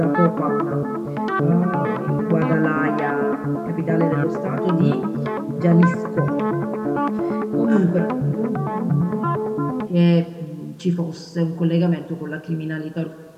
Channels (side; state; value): both; identical; correlation 1.00